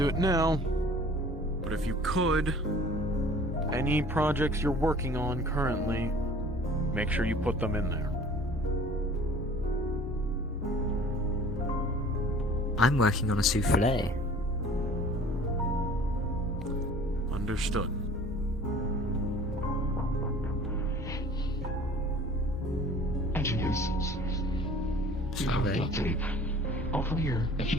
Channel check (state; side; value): normal; both; correlation 0.48